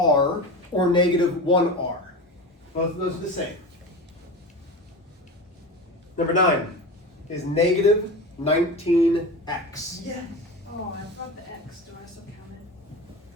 or negative 1r. Both of those are the same. Number 9 is negative 19x. Yes. Oh, I forgot the X. Do I still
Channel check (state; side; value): normal; both; correlation 0.28